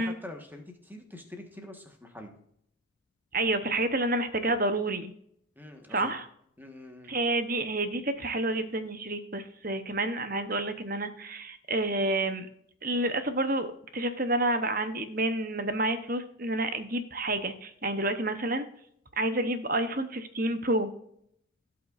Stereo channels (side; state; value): both; normal; correlation 0.09